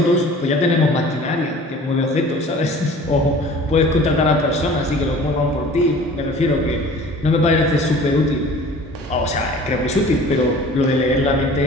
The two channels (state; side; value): normal; both; correlation 0.46